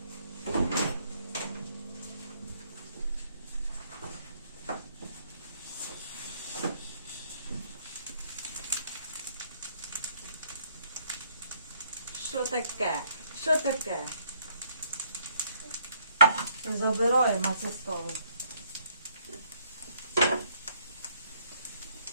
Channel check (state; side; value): inverted; both; correlation -0.68